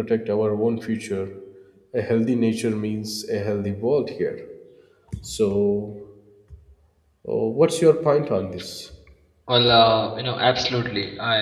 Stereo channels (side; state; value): both; identical; correlation 1.00